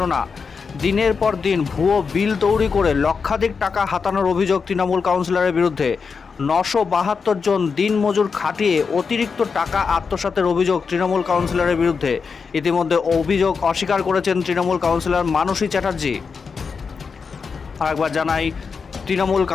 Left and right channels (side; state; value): right; quieter; 5.4 dB